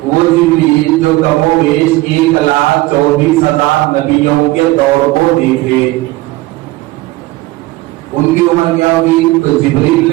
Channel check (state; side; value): quieter; left; 19.4 dB